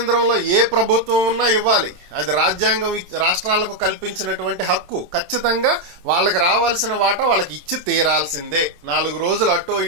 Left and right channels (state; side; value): late; left; 27 ms